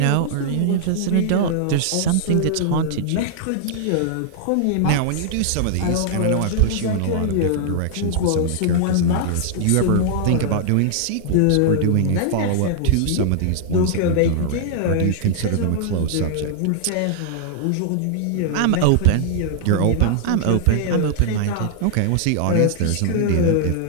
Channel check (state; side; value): different; both; correlation -0.01